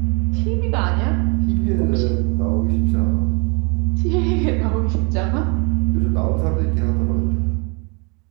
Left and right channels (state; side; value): quieter; left; 32.3 dB